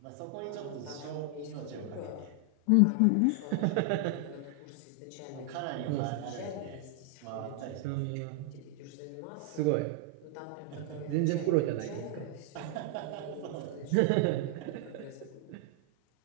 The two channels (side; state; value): both; different; correlation 0.00